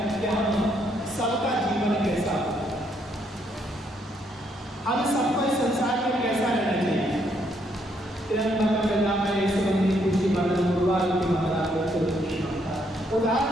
कि हम सबका जीवन कैसा, हम सबको इस संसार में कैसा रहना चाहिए।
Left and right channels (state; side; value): normal; both; correlation 0.72